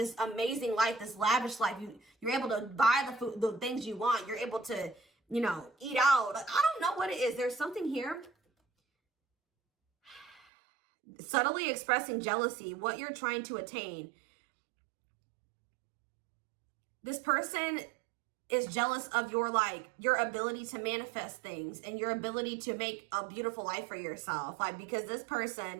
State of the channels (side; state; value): left; drops out; at 10.4 s